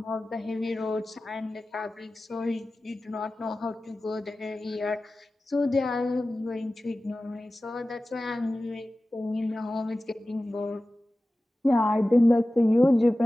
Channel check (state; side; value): normal; both; correlation 0.96